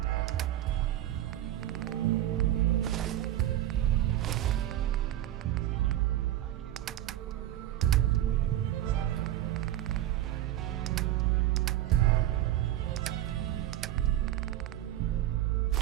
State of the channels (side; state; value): left; quieter; 13.3 dB